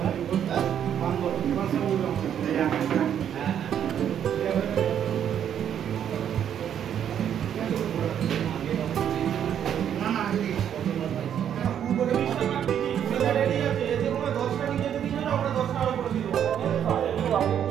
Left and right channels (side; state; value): left; quieter; 9.3 dB